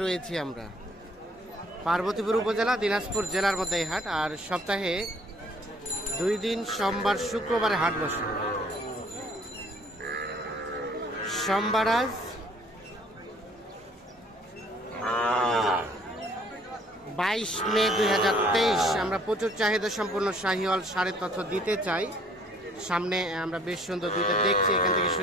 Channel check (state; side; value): normal; both; correlation 0.59